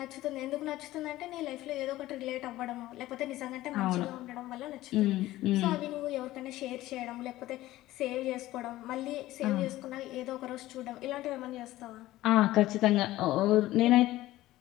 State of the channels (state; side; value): quieter; right; 16.2 dB